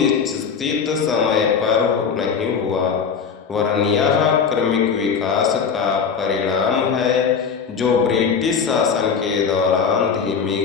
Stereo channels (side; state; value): right; quieter; 6.2 dB